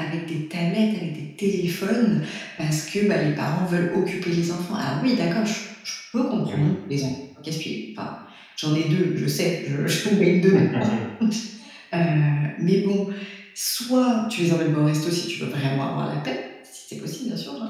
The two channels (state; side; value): identical; both; correlation 1.00